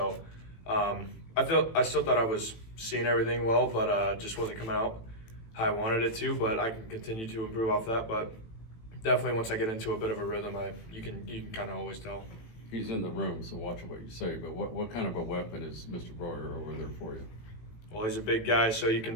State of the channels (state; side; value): late; right; 18 ms